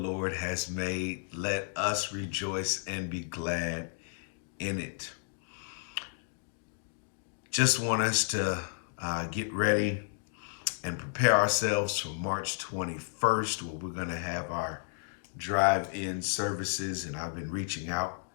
has made. Let us rejoice and be glad in it. Just want us to get ready and prepare ourselves for March 21st, where we're going to have our drive-in services. And I've been reaching out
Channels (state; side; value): silent; right; digital silence